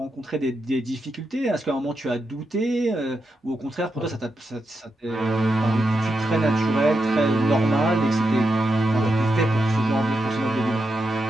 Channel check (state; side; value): normal; both; correlation 0.86